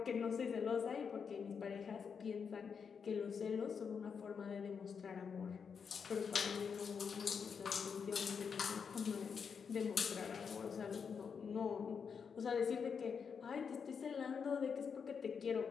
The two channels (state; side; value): quieter; right; 6.3 dB